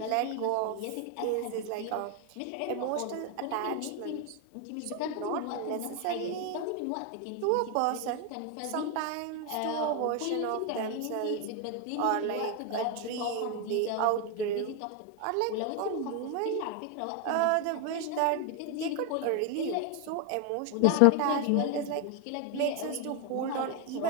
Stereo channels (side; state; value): both; different; correlation 0.01